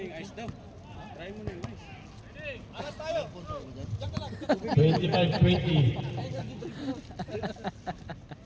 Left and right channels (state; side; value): identical; both; correlation 1.00